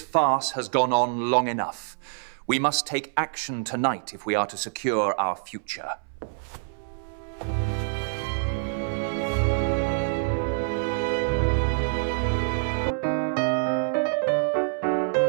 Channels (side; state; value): left; silent; 61 dB below the other